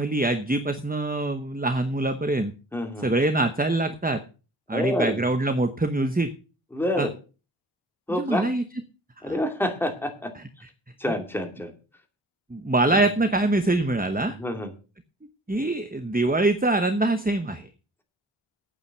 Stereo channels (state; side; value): normal; both; correlation 0.49